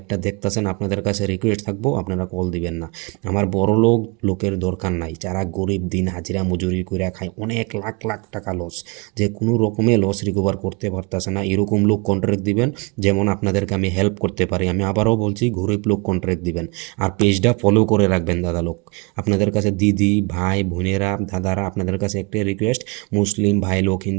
দেখতেছেন, আপনাদের কাছে রিকোয়েস্ট থাকবো আপনারা কল দিবেন না। আমার বড় লোকের দরকার নাই, যারা গরিব দিন হাজিরা মজুরি করে খায়, অনেক লাখ লাখ টাকা লস, যে কোনো রকমে লস রিকভার করতে পারতেছে না, এরকম লোক কন্ট্রাক্ট দিবেন। যেমন আপনাদেরকে আমি হেল্প করতে পারি। আমি আবারও বলছি, গরিব লোক কন্ট্রাক্ট দিবেন। আর পেজটা ফলো করে রাখবেন দাদা লোক। আপনাদের কাছে দিদি ভাই বোনেরা দাদারা, আপনাদের কাছে একটাই রিকোয়েস্ট, মুসলিম ভাই লোক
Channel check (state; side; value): quieter; left; 29.1 dB